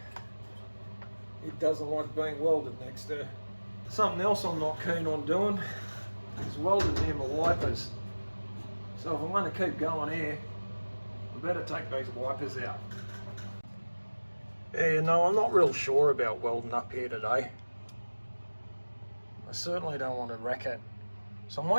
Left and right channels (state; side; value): inverted; both; correlation -1.00